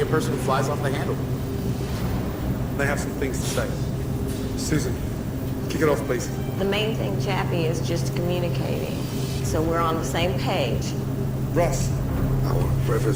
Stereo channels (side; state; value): both; identical; correlation 1.00